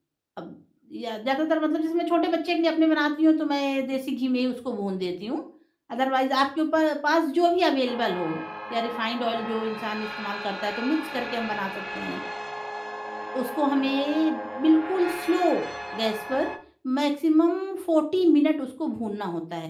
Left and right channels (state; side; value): identical; both; correlation 1.00